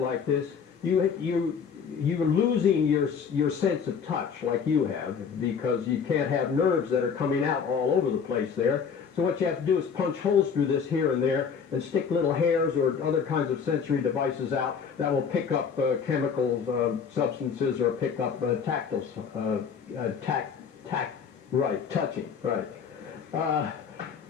this, you you're losing your sense of touch like you have, because you can't have nerves that are coming out all over the place there. So what you have to do is punch holes through this here and there and stick little hairs or other kinds of sensory devices out that will pick up chemical substances or pick up tactile, touching, right.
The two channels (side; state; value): right; quieter; 6.5 dB